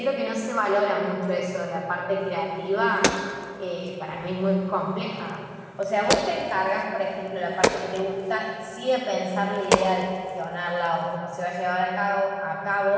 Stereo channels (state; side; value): identical; both; correlation 1.00